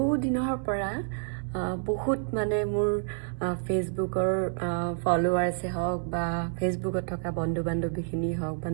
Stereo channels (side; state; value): left; silent; 59 dB below the other